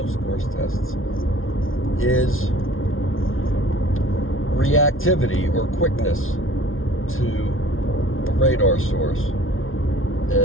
course tests, is reactivity or quickness to a radar source.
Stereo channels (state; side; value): late; right; 0.60 ms